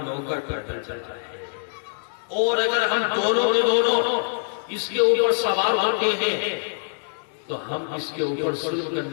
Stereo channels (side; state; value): right; silent; digital silence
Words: نوکر پیدل چلتا ہے، اور اگر ہم دونوں کے دونوں اس کے اوپر سوار ہوتے ہیں تو ہم اس کے اوپر ظلم